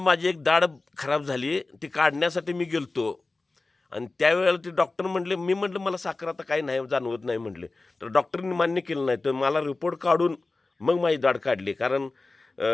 माझी एक दाढ खराब झाली. ती काढण्यासाठी मी गेलतो आणि त्यावेळेला ते डॉक्टर म्हटले, मी म्हटलं मला साखर आता काही नाही जाणवत नाही म्हटले. तर डॉक्टरनी मान्य केलं नाही. तर मला रिपोर्ट काढून मग माझी दाढ काढली. कारण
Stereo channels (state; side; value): quieter; right; 3.4 dB